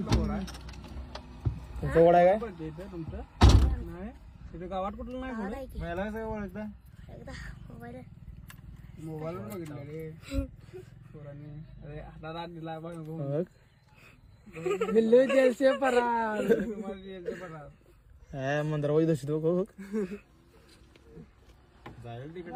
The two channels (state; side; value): identical; both; correlation 1.00